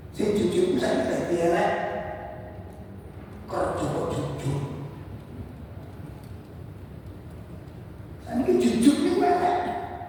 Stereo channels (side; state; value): both; identical; correlation 1.00